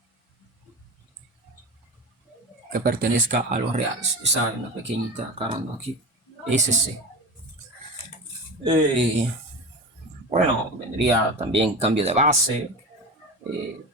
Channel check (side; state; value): both; normal; correlation 0.27